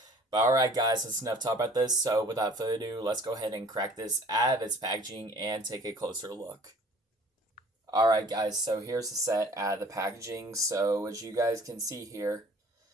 But alright guys, that's enough talk about this. So without further ado, let's go ahead and crack this out of its packaging and take a closer look. Alright guys, so here's the set out of the packaging. So as you guys can see here,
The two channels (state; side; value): normal; both; correlation 0.50